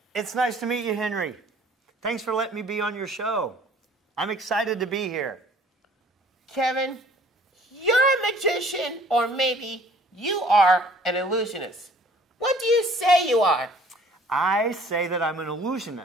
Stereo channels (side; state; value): both; normal; correlation 0.54